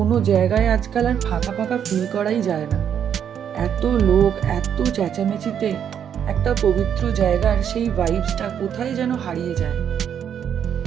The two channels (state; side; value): quieter; left; 8.6 dB